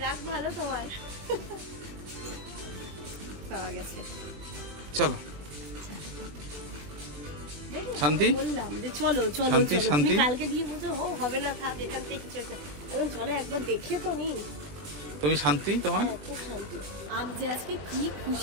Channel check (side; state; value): left; late; 21 ms